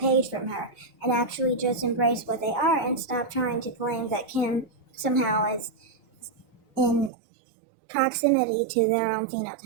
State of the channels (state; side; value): drops out; left; at 7.1 s